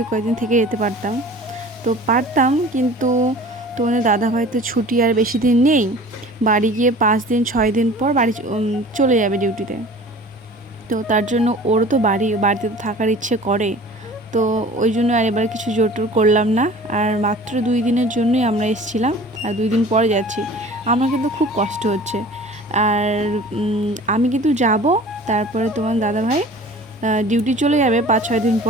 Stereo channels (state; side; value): normal; both; correlation 0.43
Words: তো পারতাম, কিন্তু তোমাদের দাদাভাই তো ছুটি আর বেশি দিন নেই। বাড়ি গিয়ে 5 দিন 6 দিন পর বাড়ি চলে যাবে ডিউটিতে। তো তার জন্য ওরও তো বাড়িতে তো থাকার ইচ্ছে করে। তো ওই জন্য আর এবার কিছু জোর করলাম না। আর মাত্র 2 দিনের জন্যই আমরা এসেছিলাম, আর 2 দিন পরে যাচ্ছি। আমার কিন্তু খুব কষ্ট হচ্ছে। আর আমি কিন্তু যাব, তারপরে তোমার দাদাভাই ডিউটি চলে যাবে 5-6 দিন